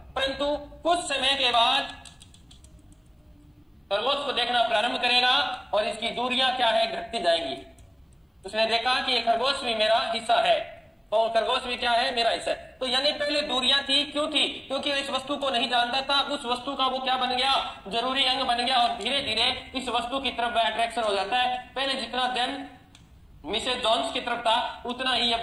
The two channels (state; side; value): identical; both; correlation 1.00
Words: परंतु कुछ समय के बाद खरगोश को देखना प्रारंभ करेगा और इसकी दूरियां क्या है? घटती जाएंगी। उसने देखा कि ये खरगोश भी मेरा हिस्सा है, और खरगोश भी क्या है? मेरा हिस्सा है। तो यानी पहले दूरियां थी, क्यों थी? क्योंकि इस वस्तु को नहीं जानता था। उस वस्तु का वो क्या बन गया? जरूरी अंग बन गया, और धीरे धीरे इस वस्तु की तरफ अट्रैक्शन हो जाता है। पहले जितना दिन मिसेज जॉन्स की तरफ था उतना ही अब